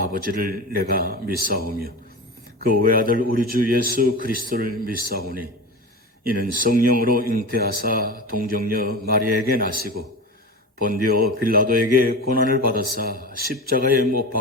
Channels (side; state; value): both; normal; correlation 0.28